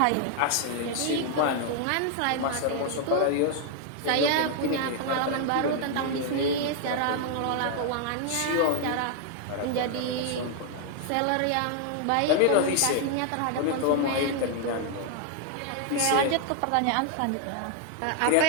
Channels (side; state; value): both; different; correlation 0.00